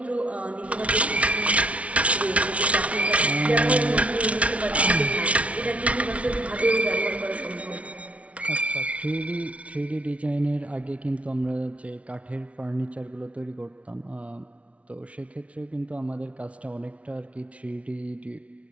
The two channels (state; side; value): late; left; 0.064 ms